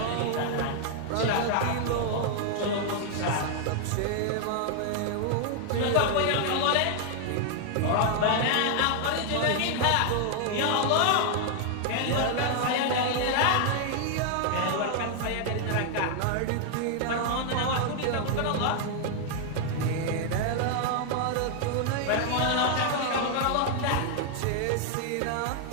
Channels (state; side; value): different; both; correlation 0.00